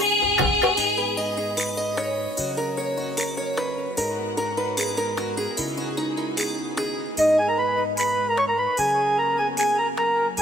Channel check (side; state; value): both; normal; correlation 0.70